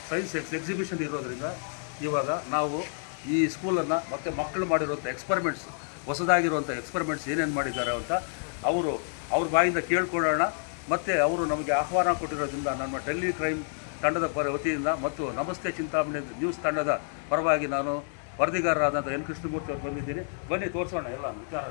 ಸೈನ್ಸ್ ಎಕ್ಸಿಬಿಷನ್ ಇರೋದ್ರಿಂದ ಇವಾಗ ನಾವು ಈ ಸ್ಕೂಲನ್ನು ಮತ್ತು ಮಕ್ಕಳು ಮಾಡಿರುವಂಥ ಎಕ್ಸ್ಪರಿಮೆಂಟ್ಸ್, ಹೊಸದಾಗಿರುವಂಥ ಎಕ್ಸ್ಪರಿಮೆಂಟ್ಸ್ ಏನೇನು ಮಾಡಿದ್ದಾರೆ ಅಂತ ಅವ್ರ ಬಾಯಿಂದ ಕೇಳ್ಕೊಳ್ಳೋಣ. ಮತ್ತು ಅವರು ನಮಗೆ ಆಹ್ವಾನ ಕೊಟ್ಟಿರೋದ್ರಿಂದ ನಮ್ಮ ಡೆಲ್ಲಿ ಕ್ರೈಮ್ ತಂಡದ ವತಿಯಿಂದ ಮತ್ತು ನಮಸ್ತೆ ಚಿಂತಾಮಣಿ ನ್ಯೂಸ್ ತಂಡದ ಪರವಾಗಿ ನಾನು ವರದಿಗಾರರಾದಂಥ ಎನ್ ಕೃಷ್ಣಮೂರ್ತಿ ಅವರು ಬಂದಿದ್ದೀನಿ. ಬನ್ನಿ ತೋರಿಸೋಣ, ಎಲ್ಲ ವಿಚಾರ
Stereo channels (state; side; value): silent; right; digital silence